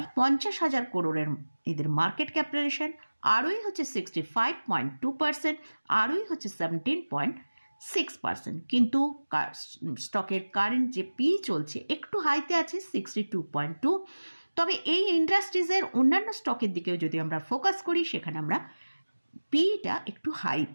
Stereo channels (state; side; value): inverted; both; correlation -1.00